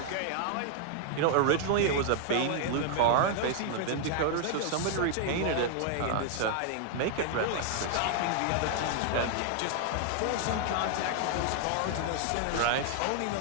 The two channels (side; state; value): both; different; correlation 0.00